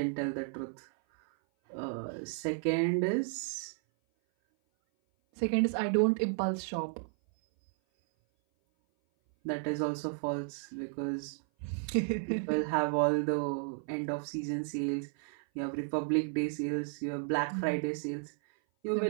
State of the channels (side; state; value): left; silent; 56 dB below the other